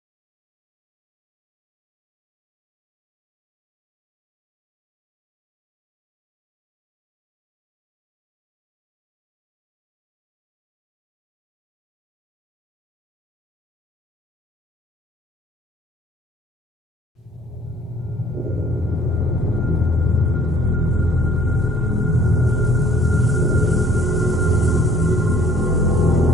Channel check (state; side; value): normal; both; correlation 0.57